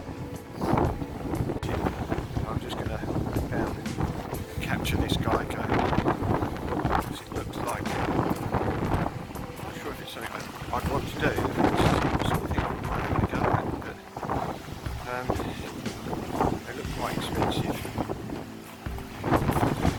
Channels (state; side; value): identical; both; correlation 1.00